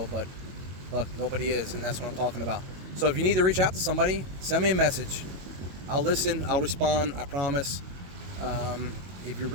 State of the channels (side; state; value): left; late; 22 ms